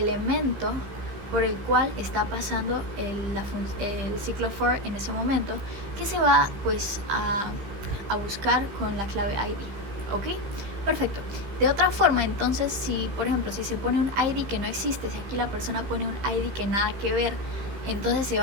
por el cual está pasando el ciclo for en ese momento, que se va pues a buscar con la clave ID. ¿Ok? Perfecto. De otra forma, entonces, si por ejemplo, si se pone un ID que no existe, si aquí la persona pone un ID que nada que ver, entonces se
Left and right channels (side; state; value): left; late; 15 ms